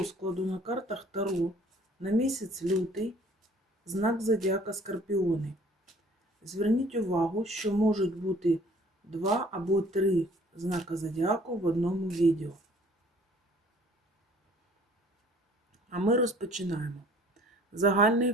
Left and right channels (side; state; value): both; normal; correlation 0.55